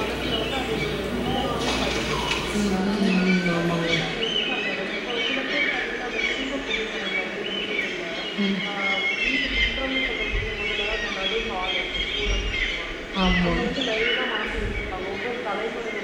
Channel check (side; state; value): both; identical; correlation 1.00